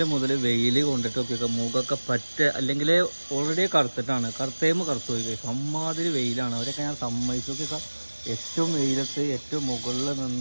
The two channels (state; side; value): inverted; both; correlation -1.00